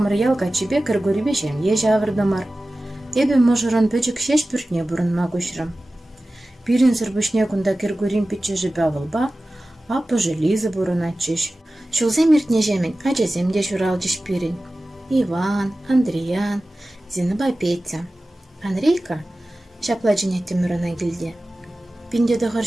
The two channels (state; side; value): normal; both; correlation 0.96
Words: ялға чебе кіргөрібе жем ежі авырдымар. Эбі мұжырын пөчік шеш бүртне бұрынма көшірім. Пирин сырбышне күнда кіргөрім пітчі жібе авылба, апы желізі бұрын атчыш. Шылзем ертне жемін, ачаземде журал жеш пирин. Иван, Андриан, Зиныба Петя. Андрейка шапла женетті мұрына келде. Пинде дұғыр